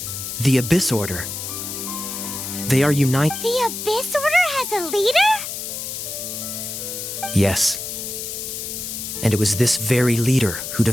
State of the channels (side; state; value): left; noise; hiss, 6 dB below the sound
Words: The Abyss Order. They are united. The Abyss Order has a leader? Yes. And it was this very leader who